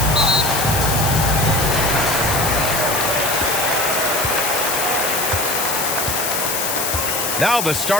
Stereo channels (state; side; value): noise; left; hiss, 1 dB below the sound